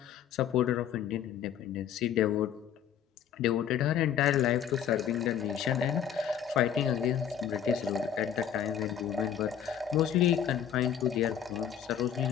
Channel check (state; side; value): quieter; right; 9.1 dB